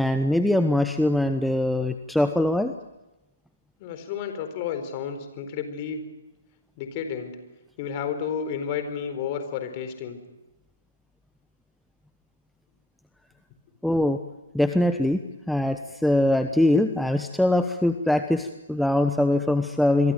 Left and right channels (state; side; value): normal; both; correlation 0.79